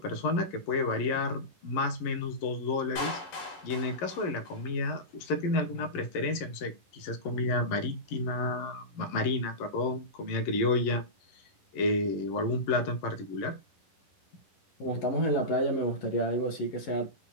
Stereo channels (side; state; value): right; late; 11 ms